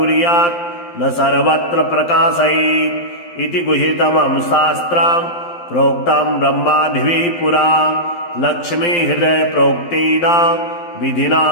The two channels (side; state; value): right; late; 12 ms